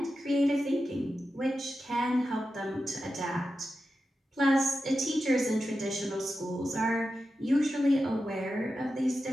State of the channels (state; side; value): normal; both; correlation 0.91